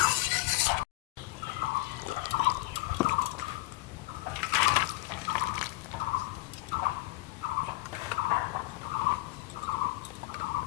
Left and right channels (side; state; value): right; quieter; 20.7 dB